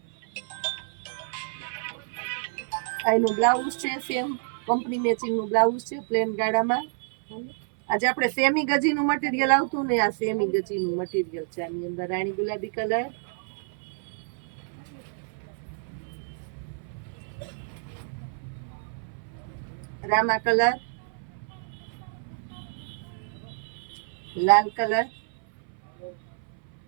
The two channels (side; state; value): left; silent; 59 dB below the other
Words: એનું બ્લાઉઝ છે સેમ કંપની મેચિંગ નું બ્લાઉઝ છે, પ્લેન ગાળામાં. આજે આપણે સેમી ગજીનું મટીરિયલ આવતું ને, આ સેમી ગજીનું મટીરિયલ છે. આની અંદર રાણી ગુલાબી કલર, રામા કલર, લાલ કલર,